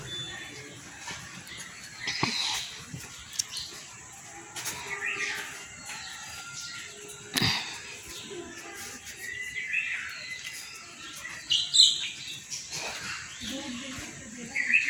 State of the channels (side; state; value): both; identical; correlation 1.00